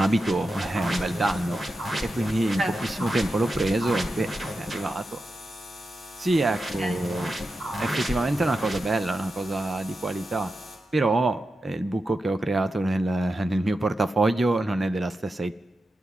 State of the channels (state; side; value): normal; both; correlation 0.90